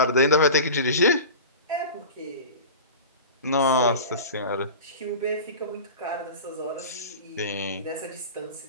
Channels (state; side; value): inverted; both; correlation -0.32